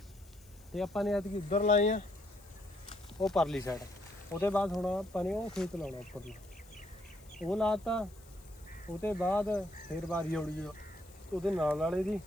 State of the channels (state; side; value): noise; left; hiss, 26 dB below the sound